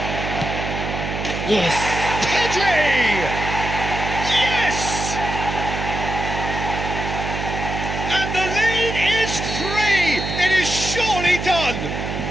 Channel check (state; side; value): noise; right; hum, 5 dB below the sound